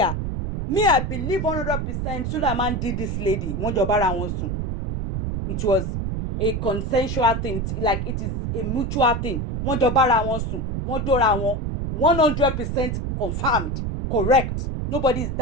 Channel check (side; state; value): right; noise; rumble, 2 dB below the sound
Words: I believe 100% Sulaiman did this lady. It was a consensual thing, like it is a mutual thing. 100% confirmed, correct. Nobody is